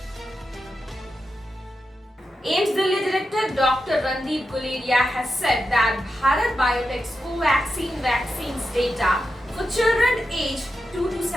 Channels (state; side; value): normal; both; correlation 0.89